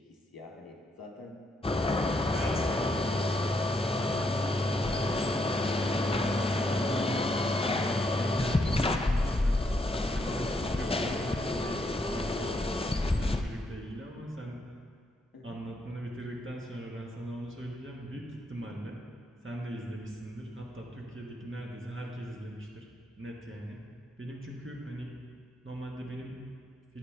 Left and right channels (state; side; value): normal; both; correlation 0.77